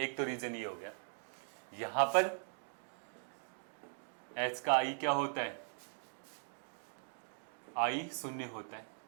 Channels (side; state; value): left; silent; digital silence